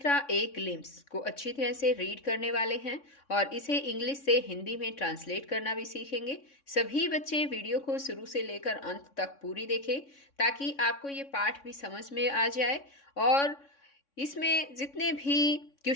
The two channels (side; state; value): right; late; 3.6 ms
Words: ए ग्लिम्स को अच्छी तरह से रीड करने वाले हैं और इसे इंग्लिश से हिंदी में ट्रांसलेट करना भी सीखेंगे। सभी बच्चे वीडियो को शुरू से लेकर अंत तक पूरी देखें ताकि आपको ये पाठ भी समझ में आ जाए और इसमें जितने भी